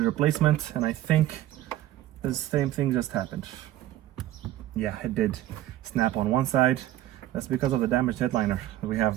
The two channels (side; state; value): left; quieter; 14.0 dB